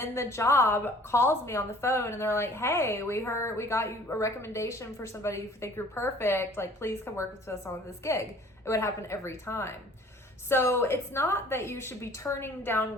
the job calls me on the phone and they're like, hey, we got you a recommendation for somebody who think you're perfect. Like, please come work with us on this gig. It would happen every time. So it's not that you should be turning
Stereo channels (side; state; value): both; normal; correlation 0.52